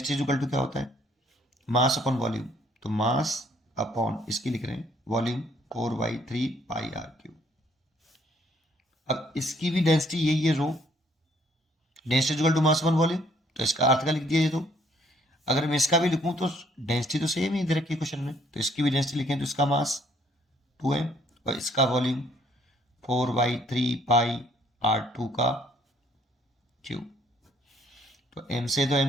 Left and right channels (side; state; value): both; normal; correlation 0.64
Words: इक्वल टू क्या होता है, मास अपॉन वॉल्यूम। तो मास अपॉन इसकी लिख रहे हैं वॉल्यूम 4/3 पाई R3। अब इसकी भी डेंसिटी यही है, rho. Density equal to mass upon volume, तो इसका अर्थ का लिख दिया ये। तो अगर मैं इसका भी लिखूं तो डेंसिटी तो सेम ही दे रखी है क्वेश्चन में, तो इसकी भी डेंसिटी लिखें तो इसका मास 2m और इसका वॉल्यूम 4/3 पाई R2 का क्यूब। तो m से तो